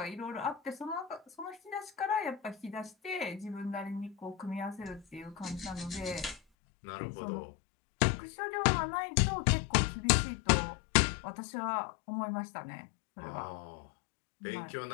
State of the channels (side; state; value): right; drops out; at 6.4 s